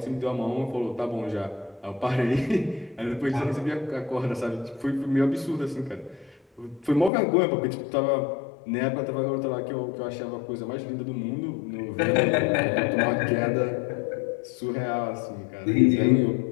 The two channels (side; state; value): right; drops out; at 7.1 s